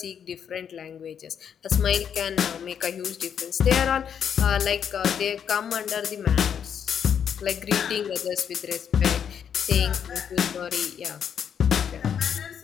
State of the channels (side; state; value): right; quieter; 8.1 dB